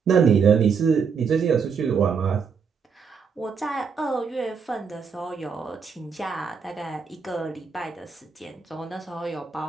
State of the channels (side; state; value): left; quieter; 5.9 dB